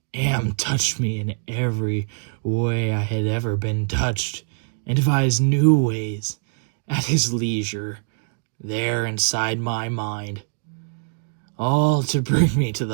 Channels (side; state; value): left; silent; digital silence